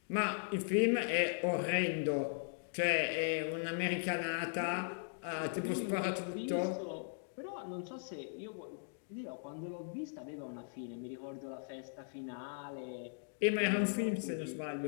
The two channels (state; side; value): silent; right; digital silence